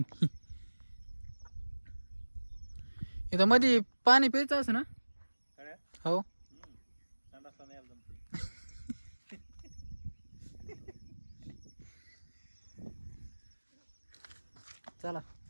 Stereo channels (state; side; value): inverted; both; correlation -1.00